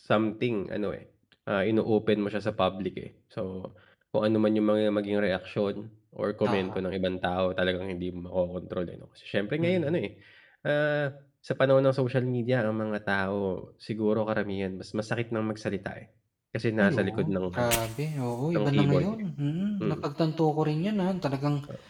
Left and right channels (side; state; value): both; identical; correlation 1.00